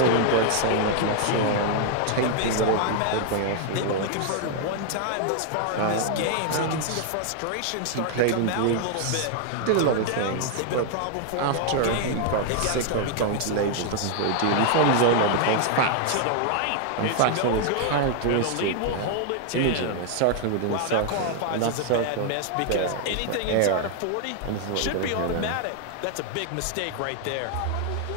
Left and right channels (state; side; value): different; both; correlation 0.00